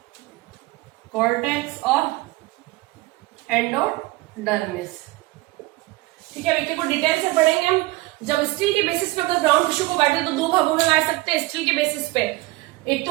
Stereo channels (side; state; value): left; quieter; 20.5 dB